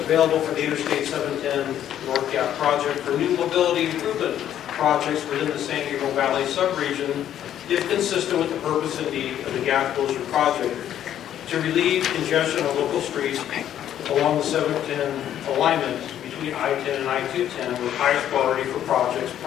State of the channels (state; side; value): quieter; right; 10.8 dB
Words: for the Interstate 710 North Gap project for new mobility improvement projects within the San Gabriel Valley subregion, if consistent with the purpose and need of the gap closure project, to relieve congestion on local streets along the 710 alignment between I-10 and I-210 with highest priority for projects